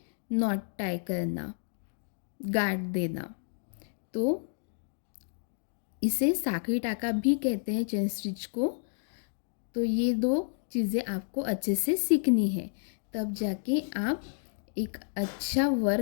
नॉट टाई करना, गांठ देना। तो इसे साखी टाका भी कहते हैं चेन स्टिच को। तो ये दो चीज़ें आपको अच्छे से सीखनी है, तब जाके आप एक अच्छा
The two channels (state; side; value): silent; right; digital silence